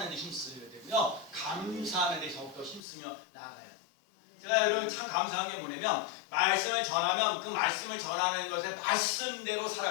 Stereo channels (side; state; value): right; drops out; at 2.8 s